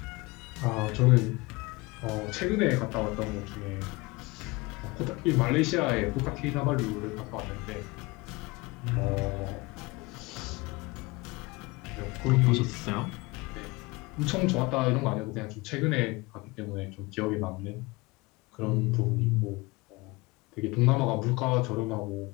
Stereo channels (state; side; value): quieter; right; 23.8 dB